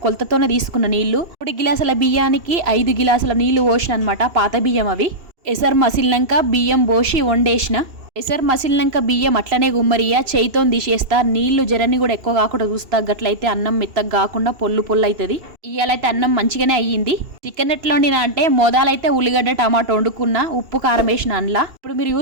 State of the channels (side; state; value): left; late; 2.7 ms